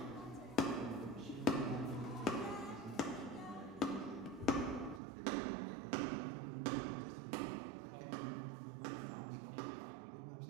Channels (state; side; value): drops out; left; at 5.0 s